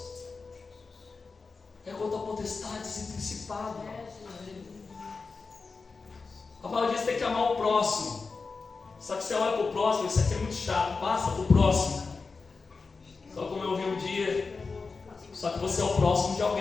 é contra potestades e principados. A palavra diz que tem que amar o próximo. Só que você olha para o próximo, isso aqui é muito chato, passa para o próximo. Só como eu ouvi um dia, só que você é o próximo de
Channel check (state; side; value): quieter; right; 4.4 dB